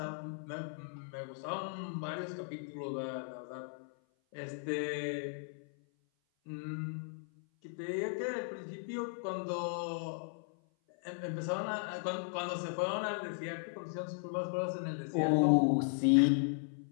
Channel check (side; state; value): right; silent; 53 dB below the other